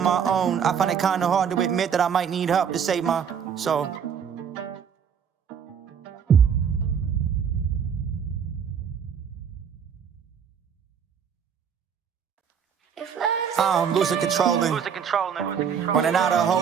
my own, I find it kinda hard to admit that I might need help to save my soul. I'm losing controlling. Running out of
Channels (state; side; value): quieter; left; 7.5 dB